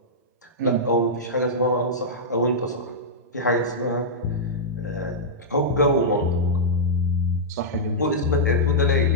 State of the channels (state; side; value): normal; both; correlation -0.10